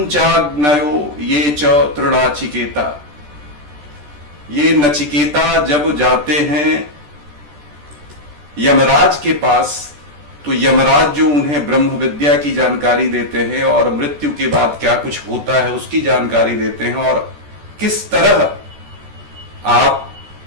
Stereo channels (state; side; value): late; left; 14 ms